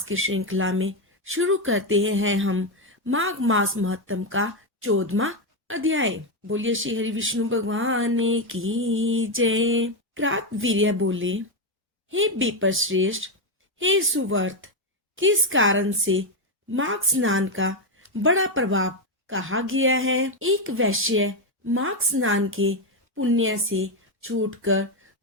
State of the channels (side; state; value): both; normal; correlation 0.06